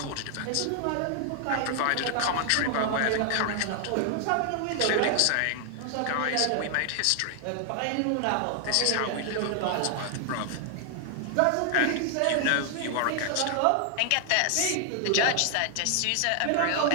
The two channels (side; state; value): both; different; correlation 0.00